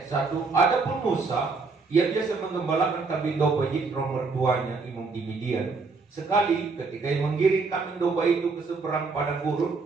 1. Adapun Musa, ia biasa menggembalakan kambing domba Yitro mertuanya, imam di Midian. Sekali ketika ia menggiring kambing domba itu ke seberang padang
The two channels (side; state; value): left; quieter; 4.3 dB